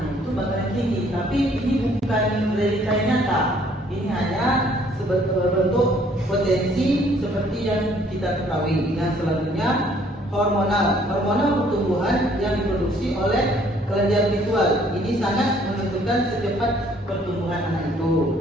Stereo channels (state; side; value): normal; both; correlation 0.61